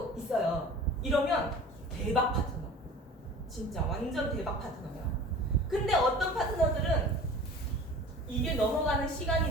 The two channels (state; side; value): normal; both; correlation 0.41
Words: 있어요. 이러면 대박 파트너, 진짜 완전 대박 파트너예요. 근데 어떤 파트너들은 이게 넘어가는